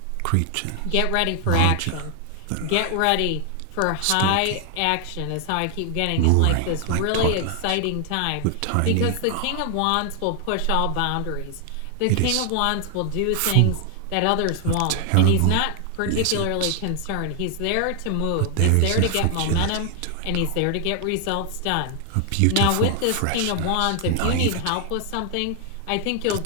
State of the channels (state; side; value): different; both; correlation 0.00